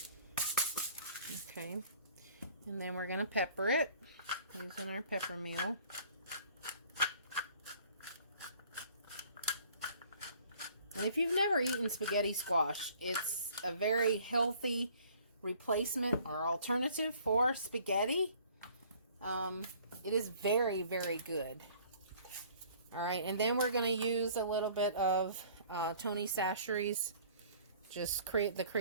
Okay, and then we're going to pepper it using our pepper meal. And if you've never eaten spaghetti squash, it's a very healthy replacement or alternative for spaghetti. It is very, very good. All right, and then we're going to use a little bit of Tony Chachere's, just the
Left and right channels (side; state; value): both; inverted; correlation -0.54